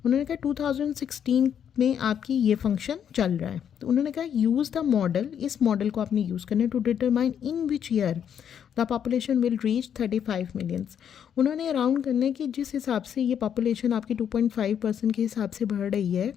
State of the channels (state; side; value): quieter; right; 8.6 dB